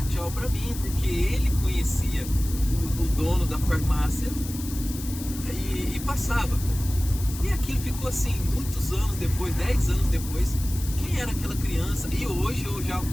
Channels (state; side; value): noise; left; hiss, 12 dB below the sound